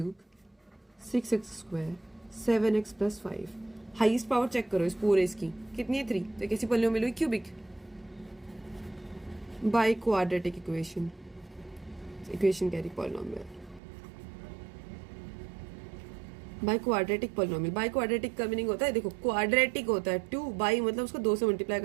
6x² 7x plus 5, highest power check करो इस पूरे इसकी कितनी है 3, तो कैसी पॉलिनोमियल हुई, cubic by quadratic equation carry polynomial by quadratic polynomial. By quadratic का मीनिंग होता है, देखो क्वाड्रेटिक होता है 2 बाई मतलब उसको 2 से मल्टीप्लाई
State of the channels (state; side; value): drops out; left; at 13.8 s